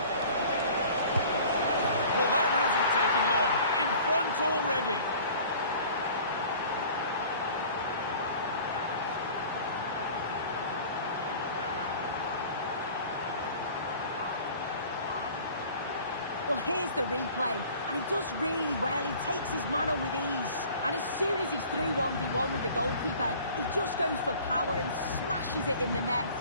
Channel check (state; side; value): inverted; both; correlation -0.47